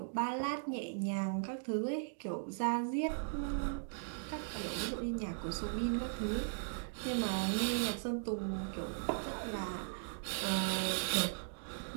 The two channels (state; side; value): silent; left; digital silence